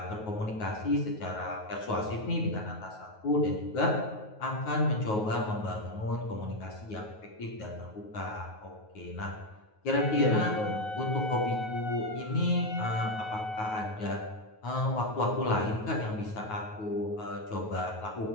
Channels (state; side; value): late; right; 9.4 ms